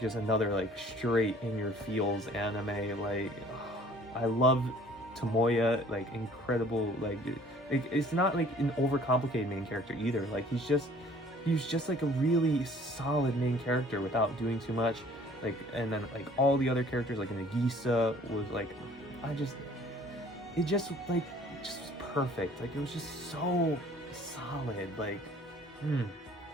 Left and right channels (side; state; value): both; normal; correlation 0.53